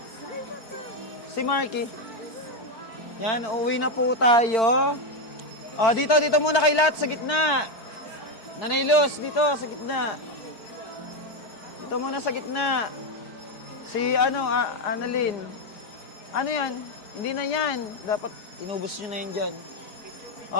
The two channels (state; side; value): late; right; 4.5 ms